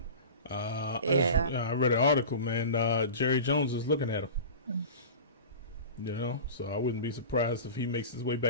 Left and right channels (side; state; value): both; inverted; correlation -0.33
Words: I read an article, man. Jerry Jones is looking at him. You know, so I wouldn't be surprised if he makes his way